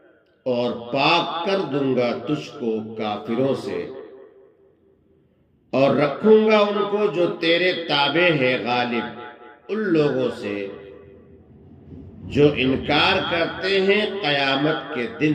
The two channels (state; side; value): identical; both; correlation 1.00